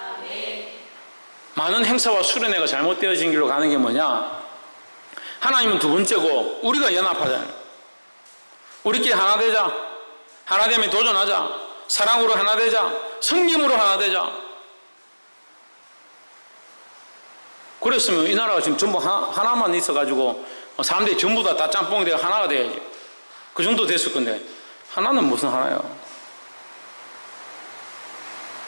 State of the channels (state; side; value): inverted; both; correlation -1.00